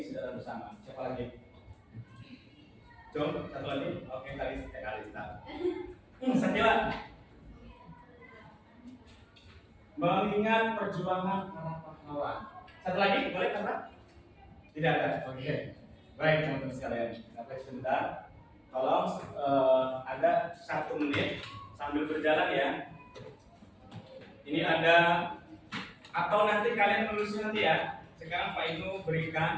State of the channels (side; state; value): both; identical; correlation 1.00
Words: secara bersama. Siapa lagi? Jom, satu lagi. Oke, Kalista. Sakila. Mengingat perjuangan para pahlawan. Satu lagi, boleh kata? Tidak ada. Oke. Baik, teman-teman sekalian. Sampai sebentar. Tolong ada 1 menit sambil berjalan ya. Ini ada, atau nanti kalian menulisnya nanti ya. Sekarang Pak Inu